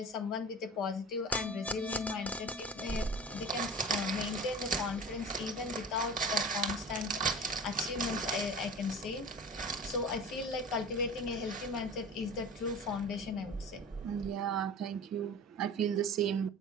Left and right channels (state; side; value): normal; both; correlation 0.36